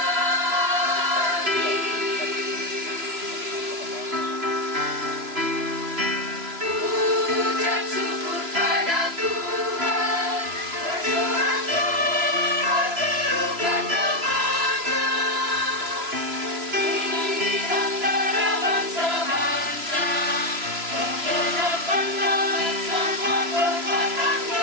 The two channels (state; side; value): late; left; 3.0 ms